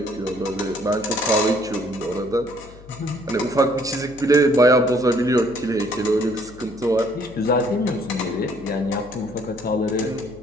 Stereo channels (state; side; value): noise; left; hum, 20 dB below the sound